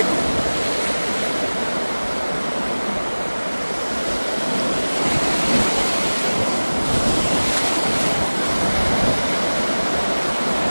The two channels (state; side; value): inverted; both; correlation -1.00